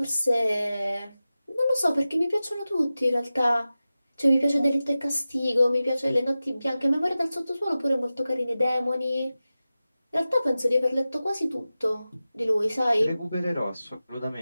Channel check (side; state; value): both; inverted; correlation -0.95